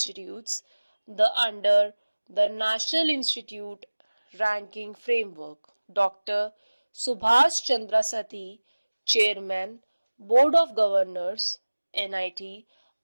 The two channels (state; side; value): inverted; both; correlation -1.00